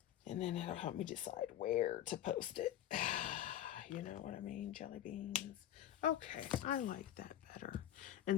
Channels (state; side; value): quieter; right; 11.7 dB